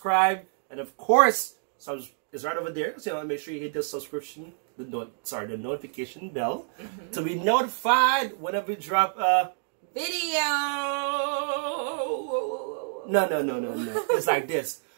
and of course, it's right over there. So make sure you hit the subscription, the notification bell to be notified whenever we drop a video. No. It's like this.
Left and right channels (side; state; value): left; silent; digital silence